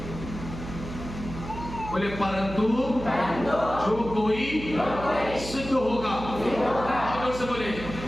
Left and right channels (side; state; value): right; noise; hum, 10 dB below the sound